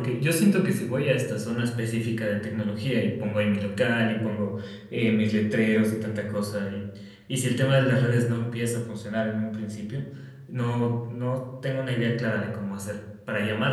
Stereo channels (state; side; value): identical; both; correlation 1.00